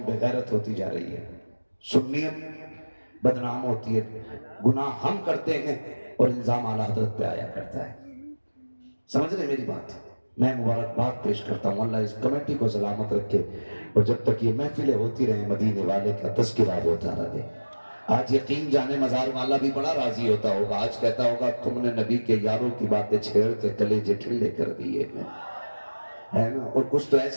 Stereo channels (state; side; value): inverted; both; correlation -1.00